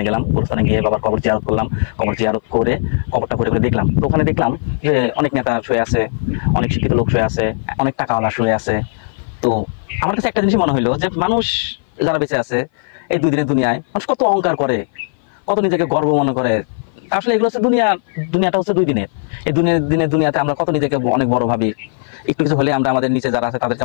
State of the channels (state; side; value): silent; right; 57 dB below the other